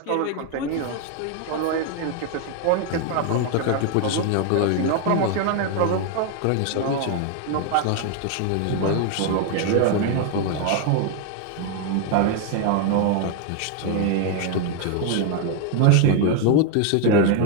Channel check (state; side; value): different; both; correlation 0.01